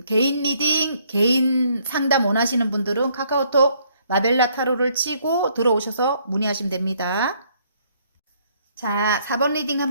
개인 리딩, 개인 상담 원하시는 분들은 카카오톡 마벨라 타로를 치고 들어오셔서 문의하시면 됩니다. 자, 4번 리딩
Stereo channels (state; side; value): inverted; both; correlation -0.67